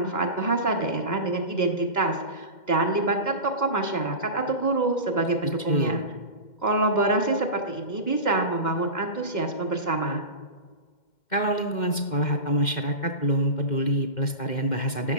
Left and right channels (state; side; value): late; right; 2.1 ms